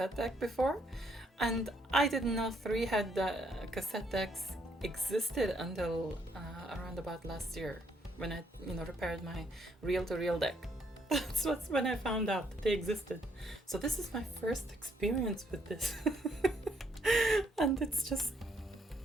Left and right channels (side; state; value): both; normal; correlation 0.71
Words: deck before, and I didn't know 3-head cassette decks existed until around about last year when I repaired my reel-to-reel deck. That's when I found out that they existed. So this is my first experience with this. And it's just,